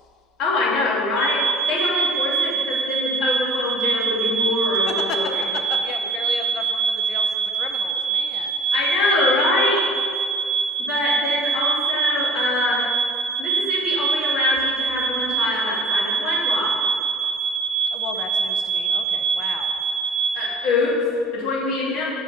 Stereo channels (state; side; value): normal; both; correlation 0.51